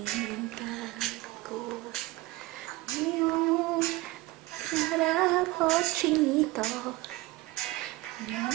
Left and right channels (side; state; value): left; quieter; 20.1 dB